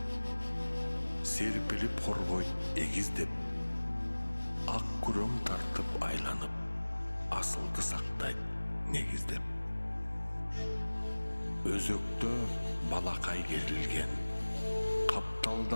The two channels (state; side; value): inverted; both; correlation -1.00